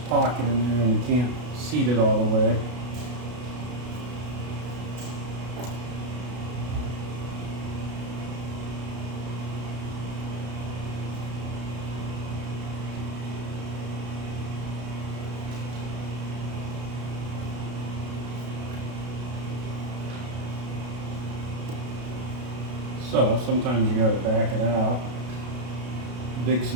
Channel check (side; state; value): left; late; 32 ms